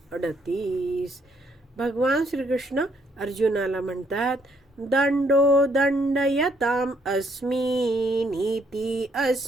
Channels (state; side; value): normal; both; correlation 0.70